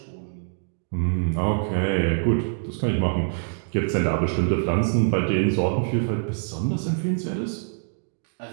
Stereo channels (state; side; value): silent; left; digital silence